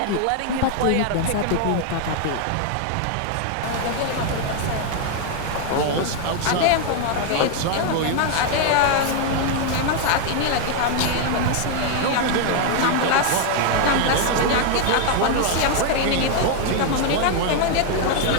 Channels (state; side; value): different; both; correlation 0.00